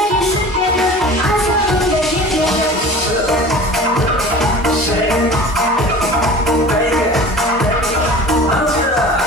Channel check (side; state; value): both; normal; correlation 0.40